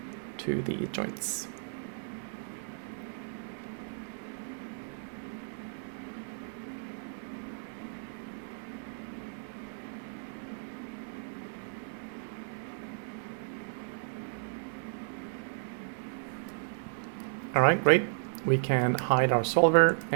to the joints. All right, great. We can hide our solver,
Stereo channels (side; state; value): left; silent; digital silence